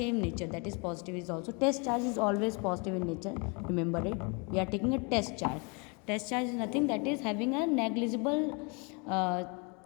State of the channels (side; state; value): right; quieter; 32.5 dB